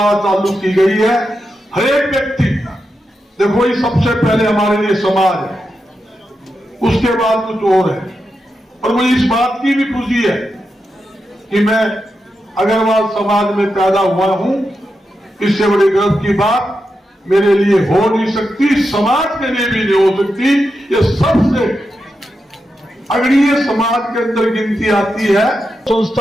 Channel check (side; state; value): both; normal; correlation 0.87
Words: चालू की गई है। हर एक व्यक्ति, देखो ये सबसे पहले हमारे लिए समाज है, उसके बाद कुछ और है। और मुझे इस बात की भी खुशी है कि मैं अग्रवाल समाज में पैदा हुआ हूं। इससे बड़ी गर्व की बात मेरे लिए हो नहीं सकती, समाज के लिए भी नहीं हो सकती। ये सबसे अग्रणीय समाज के अंदर गिनती आती है।